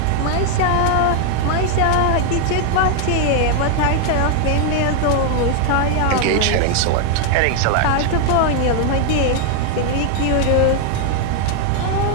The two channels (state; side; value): different; both; correlation 0.00